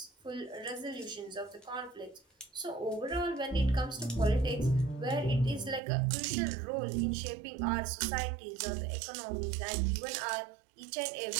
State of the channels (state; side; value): drops out; left; at 5.8 s